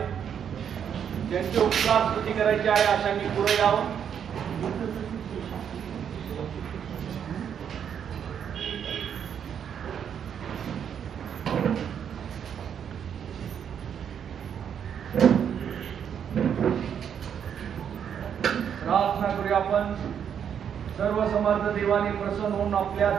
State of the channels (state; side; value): quieter; left; 8.3 dB